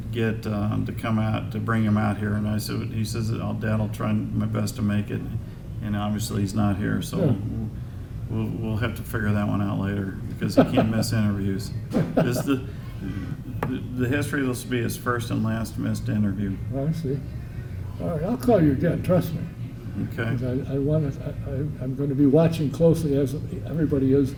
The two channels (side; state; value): both; identical; correlation 1.00